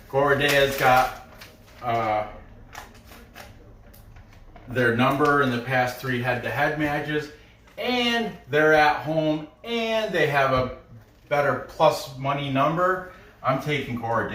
Gorodeya's got their number in the past 3 head-to-head matches, and they're at home, and they have a better plus money number, I'm taking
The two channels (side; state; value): both; identical; correlation 1.00